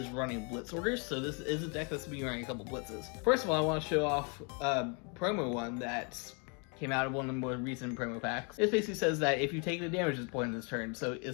running blitz orders, so this is a deck that's been running a couple blitzes. First of all, I want to show off a promo one that came out of one of the more recent promo packs. It basically says that if you take the damage at this point in this turn, so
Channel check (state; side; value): quieter; right; 35.4 dB